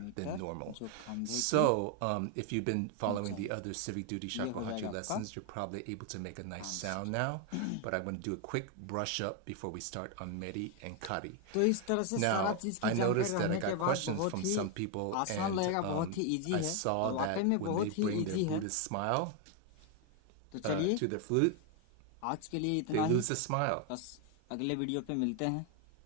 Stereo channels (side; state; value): both; different; correlation 0.01